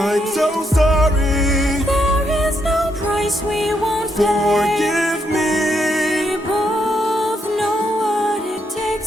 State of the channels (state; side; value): normal; both; correlation 0.78